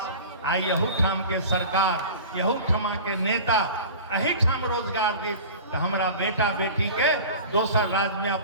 आई यहू ठाम के सरकार, यहू ठमा के नेता अही ठाम रोजगार दी, तो हमारा बेटा बेटी के दोसर राज्य में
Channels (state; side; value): inverted; both; correlation -0.37